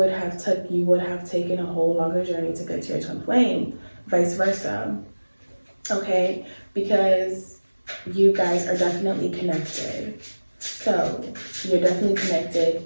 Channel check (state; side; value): inverted; both; correlation -1.00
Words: have taken a whole longer journey to get to your twin flame. Vice versa, okay? Because you guys are definitely connected. So you're definitely connected.